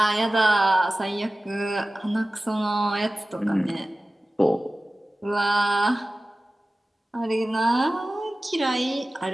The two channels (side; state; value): both; normal; correlation 0.96